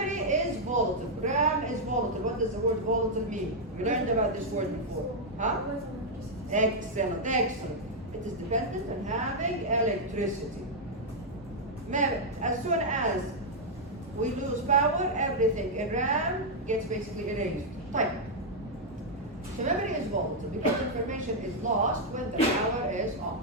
is volatile. RAM is volatile. What does the word volatile mean? We learned about this word before. Huh? Excellent. It is dependent on having electricity. As soon as we lose power, everything in RAM gets basically erased. Type. So memory is volatile because information is lost when the power is off.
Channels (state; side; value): normal; both; correlation -0.03